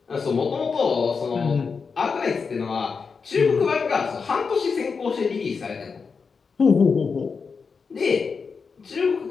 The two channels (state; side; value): quieter; right; 5.3 dB